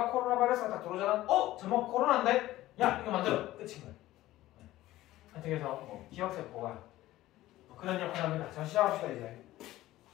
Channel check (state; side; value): quieter; right; 15.8 dB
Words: 코로나 바이러스가 딱 들어오잖아. 저거 코로나인데? 야 이거 만들어. 끝인 거야. 하여튼 그래서 기억세포가 그런 역할을 합니다. 자, 시작합시다. 이제